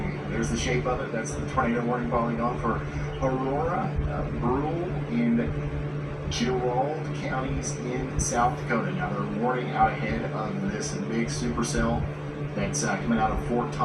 There's the shape of it. That's the tornado warning polygon for Aurora, Brule, and Gerald counties in South Dakota. Now they're warning out ahead of this big supercell that's coming out of Fort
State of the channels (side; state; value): both; identical; correlation 1.00